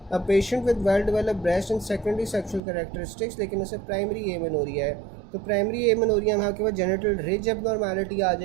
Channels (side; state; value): left; drops out; at 2.6 s